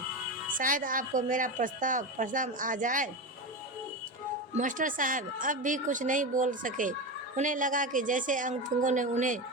शायद आपको मेरा प्रस्ताव पसंद आ जाए। मास्टर साहब अब भी कुछ नहीं बोल सके। उन्हें लगा कि जैसे अंगतुंगों ने उन्हें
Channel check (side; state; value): both; normal; correlation 0.19